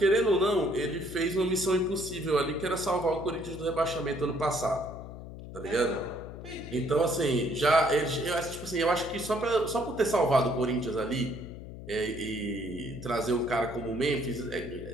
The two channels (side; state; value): left; noise; hum, 12 dB below the sound